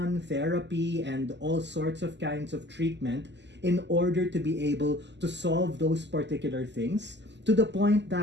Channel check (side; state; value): left; late; 0.51 ms